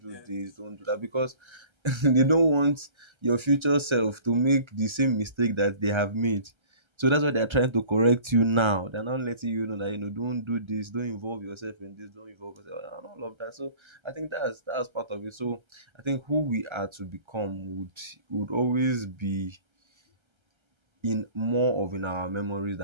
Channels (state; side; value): late; left; 1.3 ms